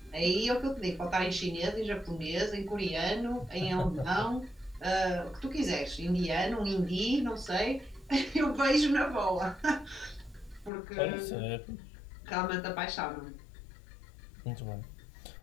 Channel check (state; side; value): drops out; right; at 10.7 s